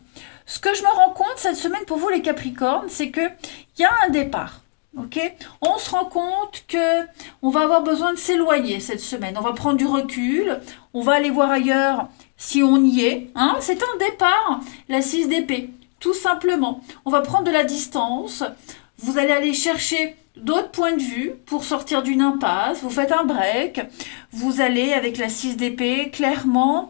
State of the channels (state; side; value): quieter; right; 33.4 dB